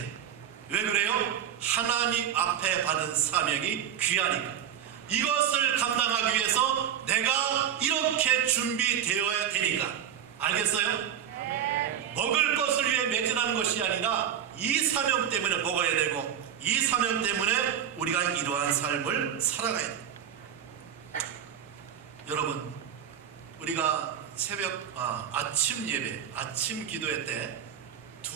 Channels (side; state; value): left; quieter; 9.3 dB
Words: 왜 그래요? 하나님 앞에 받은 사명이 귀하니까. 이것을 감당하기 위해서 내가 이렇게 준비되어야 되니까. 알겠어요? 먹을 것을 위해 매진하는 것이 아니라 이 사명 때문에 먹어야 되고 이 사명 때문에 우리가 이러한 삶을 살아가야 돼요. 여러분, 우리가 아침 예배, 아침 기도회 때